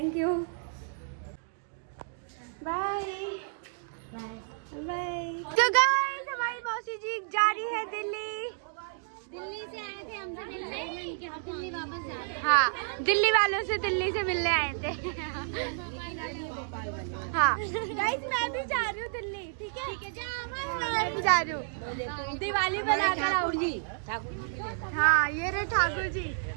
यू, बाय बाय। तो गाइस हमारी मौसी जी जा रही है दिल्ली। दिल्ली से आए थे हमसे मिलने कि हम दिल्ली वापस जा रहे हैं। हाँ, दिल्ली वालों से दिल्ली से मिलने आए थे। हाँ गाइस मैं भी जा रही हूँ दिल्ली, ठीक है? मैं भी जा रही हूँ, दिवाली बनाकर आऊंगी। हाँ ये रहे ठाकुर जी।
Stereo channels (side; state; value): left; silent; digital silence